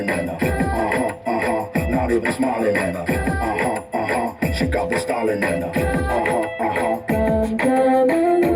in her, not even smiling in her, she got the styling in her, Come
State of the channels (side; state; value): both; identical; correlation 1.00